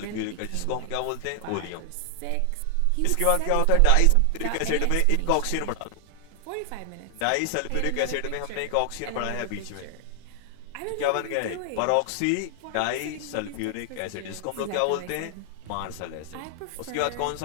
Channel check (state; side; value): different; both; correlation 0.00